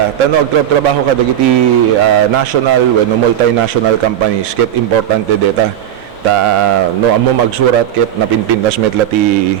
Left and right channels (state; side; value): quieter; left; 10.8 dB